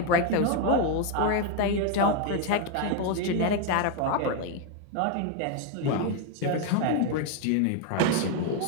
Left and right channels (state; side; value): different; both; correlation 0.01